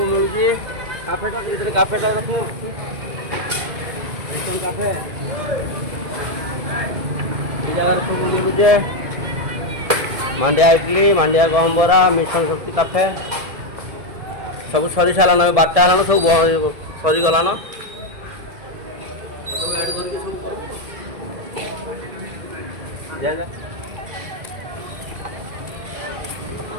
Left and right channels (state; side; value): late; left; 1.7 ms